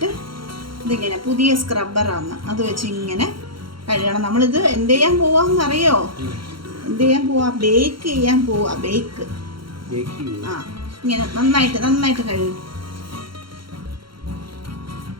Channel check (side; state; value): left; late; 0.73 ms